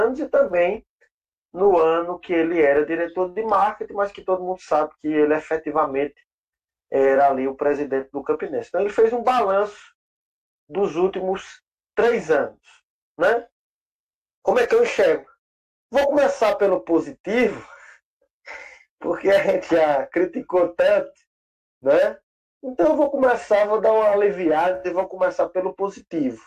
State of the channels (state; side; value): identical; both; correlation 1.00